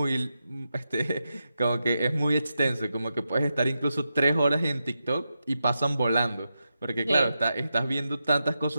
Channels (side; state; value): both; inverted; correlation -0.88